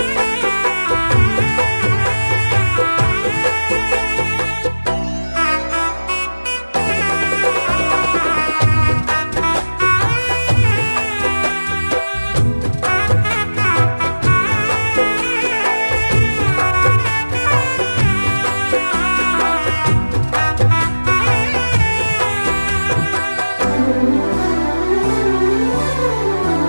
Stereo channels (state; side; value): inverted; both; correlation -1.00